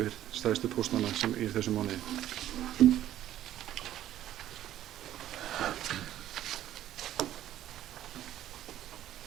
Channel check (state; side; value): quieter; left; 12.6 dB